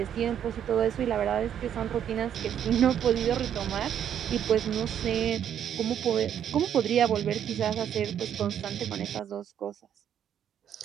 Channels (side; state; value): left; quieter; 9.5 dB